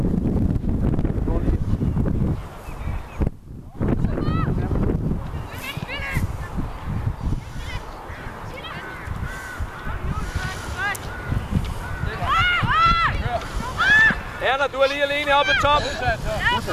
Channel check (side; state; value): both; identical; correlation 1.00